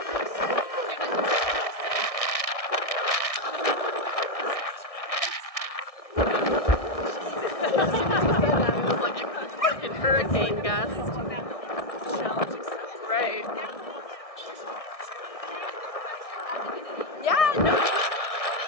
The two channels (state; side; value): late; right; 1.6 ms